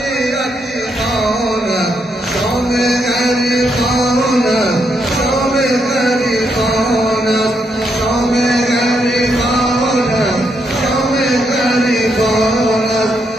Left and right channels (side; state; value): both; normal; correlation 0.78